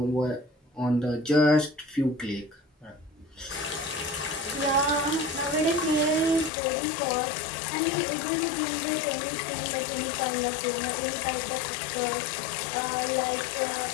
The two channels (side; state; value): right; drops out; at 6.5 s